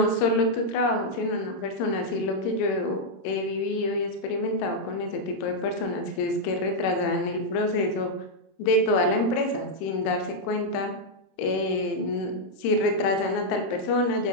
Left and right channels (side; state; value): right; late; 26 ms